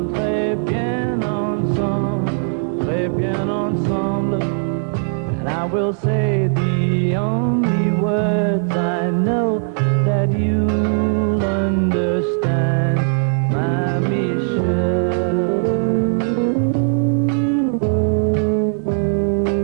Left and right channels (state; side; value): silent; left; digital silence